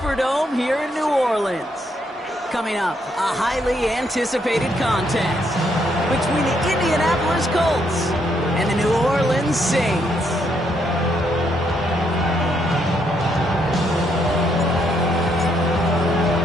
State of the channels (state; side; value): normal; both; correlation 0.74